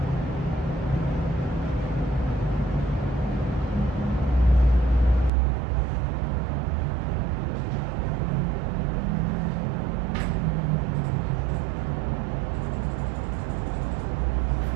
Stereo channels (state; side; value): drops out; left; at 5.3 s